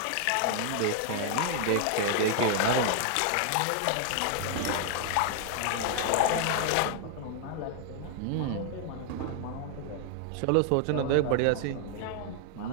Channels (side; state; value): both; different; correlation 0.00